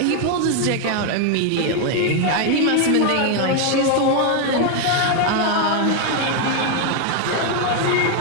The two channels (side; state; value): both; different; correlation 0.01